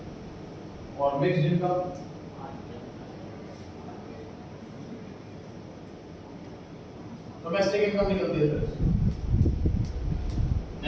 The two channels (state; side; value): identical; both; correlation 1.00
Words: और मिक्स्ड इनकम। डोमेस्टिक इनकम निकलती है सर,